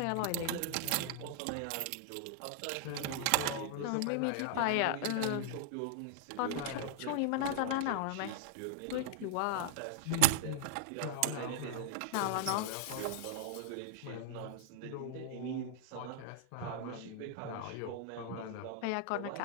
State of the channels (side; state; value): both; different; correlation -0.01